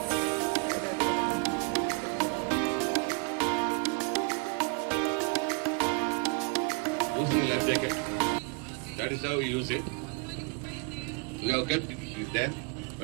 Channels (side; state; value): left; quieter; 34.6 dB